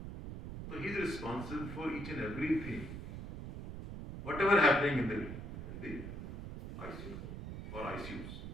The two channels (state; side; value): noise; right; rumble, 8 dB below the sound